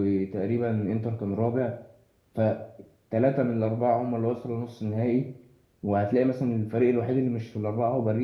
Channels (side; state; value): both; identical; correlation 1.00